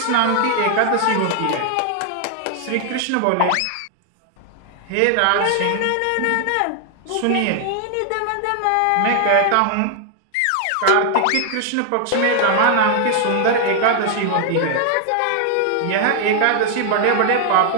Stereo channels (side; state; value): both; different; correlation 0.00